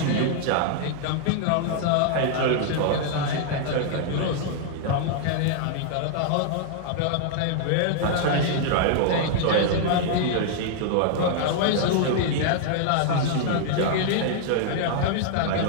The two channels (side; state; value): both; different; correlation -0.01